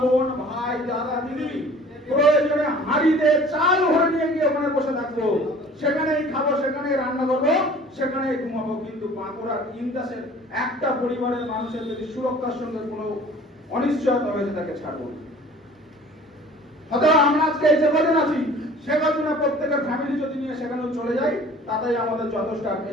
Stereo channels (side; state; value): both; normal; correlation 0.48